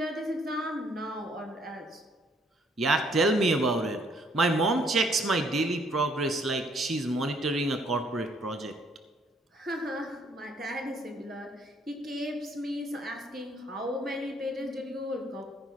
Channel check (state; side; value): normal; both; correlation 0.66